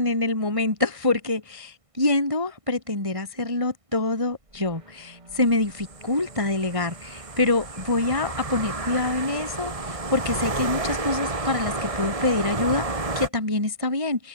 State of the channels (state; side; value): late; left; 1.6 ms